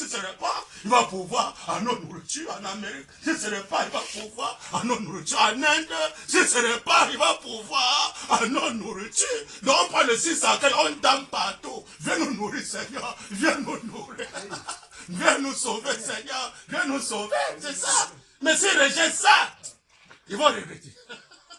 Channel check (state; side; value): identical; both; correlation 1.00